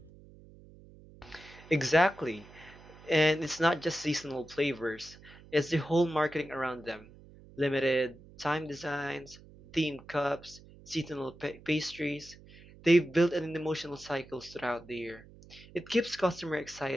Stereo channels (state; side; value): noise; right; hum, 21 dB below the sound